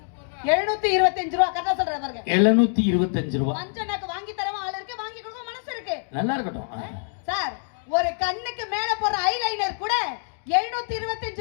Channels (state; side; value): silent; right; 62 dB below the other